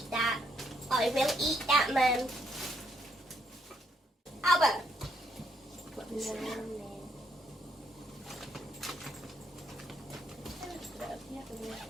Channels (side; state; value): both; normal; correlation 0.74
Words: that. I will eat that, Mum. Albert!